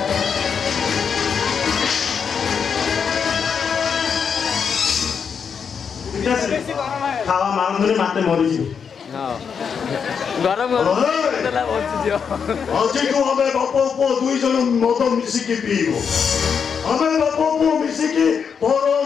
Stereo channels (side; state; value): right; quieter; 6.6 dB